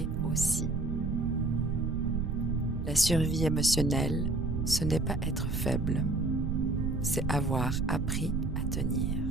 aussi. La survie émotionnelle, ce n'est pas être faible, c'est avoir appris à tenir.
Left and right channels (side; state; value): right; noise; rumble, 2 dB below the sound